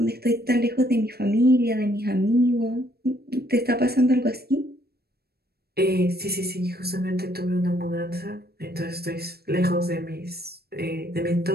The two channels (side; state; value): left; late; 0.46 ms